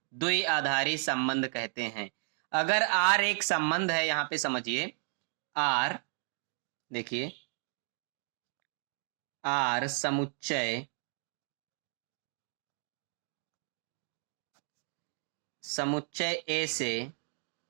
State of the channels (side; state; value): left; silent; 55 dB below the other